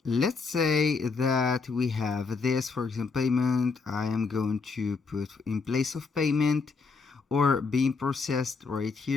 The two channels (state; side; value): quieter; right; 4.6 dB